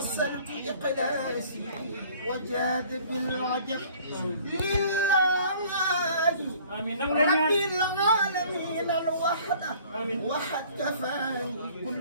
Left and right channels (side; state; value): both; inverted; correlation -0.53